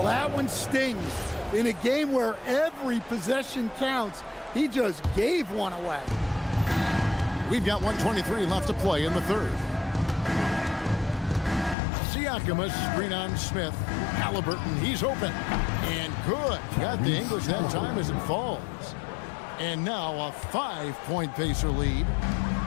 that one stings. In a game where every possession counts, he just gave one away. We've got 1:23 left to play in the third. Siakam, a screen on Smith. Halliburton, he's open. And good. Got the English that time as it falls. And now a 5-point Pacer lead.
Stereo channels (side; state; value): right; drops out; at 11.8 s